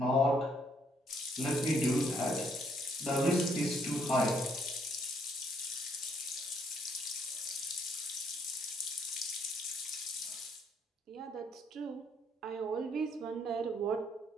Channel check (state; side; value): normal; both; correlation 0.69